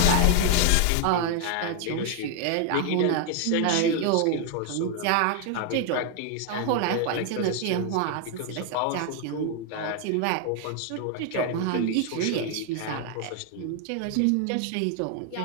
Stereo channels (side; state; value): both; different; correlation 0.01